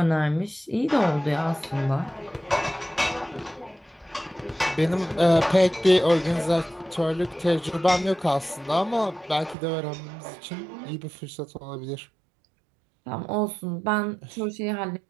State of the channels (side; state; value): left; drops out; at 9.6 s